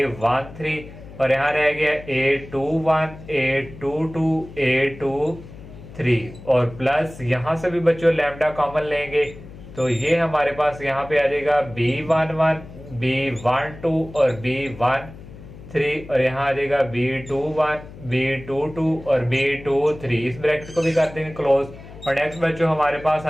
और यहाँ रह गया A21, A22, A23, और प्लस यहाँ से भी बच्चों लैम्डा कॉमन लेंगे तो ये हमारे पास यहाँ पे आ जाएगा B11, B12 और B13, और यहाँ आ जाएगा B21, B22 और B23। इस ब्रैकेट को भी कर देंगे क्लोज, और नेक्स्ट बच्चों हमारे पास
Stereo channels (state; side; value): noise; left; hum, 16 dB below the sound